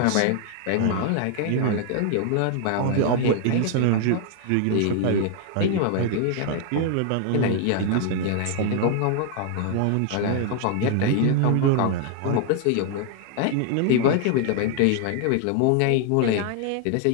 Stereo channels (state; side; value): different; both; correlation 0.00